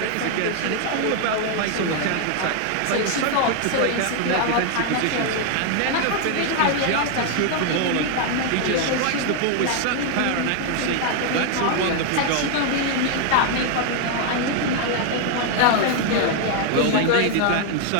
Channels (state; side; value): different; both; correlation 0.01